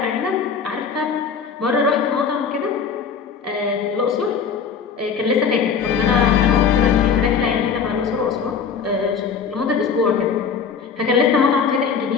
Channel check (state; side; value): quieter; right; 6.3 dB